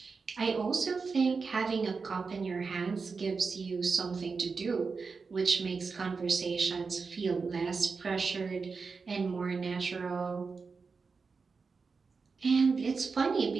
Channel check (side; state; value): left; quieter; 4.8 dB